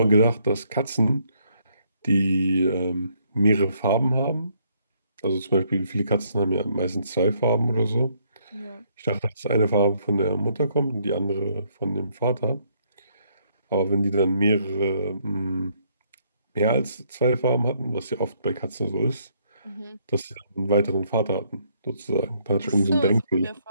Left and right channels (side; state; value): both; inverted; correlation -0.70